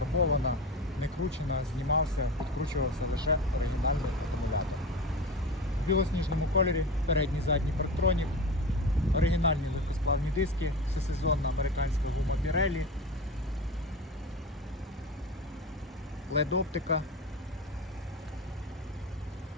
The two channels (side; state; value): both; normal; correlation 0.28